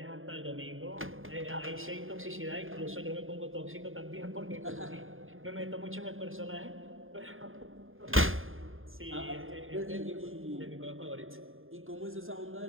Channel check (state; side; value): late; left; 0.59 ms